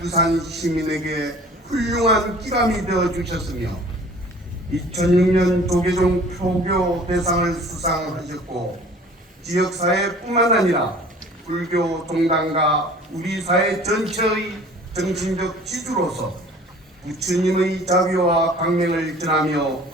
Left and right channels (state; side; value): normal; both; correlation 0.48